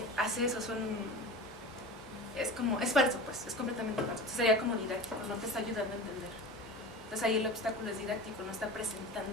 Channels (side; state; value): both; normal; correlation 0.32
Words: hace eso, es falso, pues, es completamente falso. Entonces sería como didáctico, no te está ayudando a entender. Entonces ahí el obstáculo es didáctico, no está